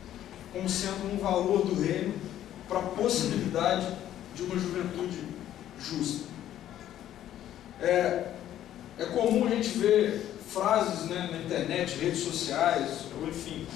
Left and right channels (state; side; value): quieter; right; 11.9 dB